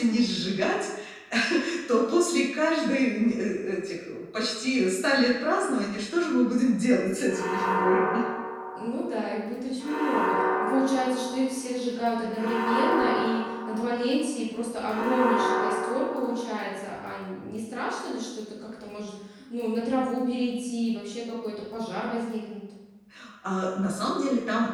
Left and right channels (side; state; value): both; identical; correlation 1.00